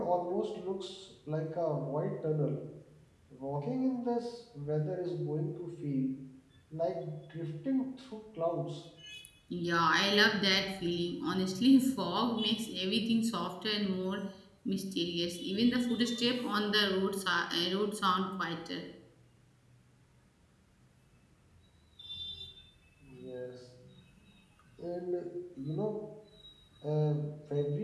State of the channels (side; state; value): both; identical; correlation 1.00